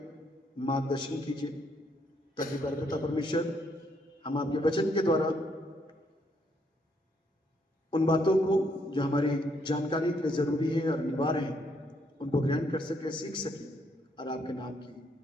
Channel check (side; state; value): both; normal; correlation 0.72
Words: मार्गदर्शन कीजिए ताकि पिता परमेश्वर हम आपके वचन के द्वारा उन बातों को जो हमारी जानकारी के लिए जरूरी है और अनिवार्य है उनको ग्रहण कर सके, सीख सके और आपके नाम की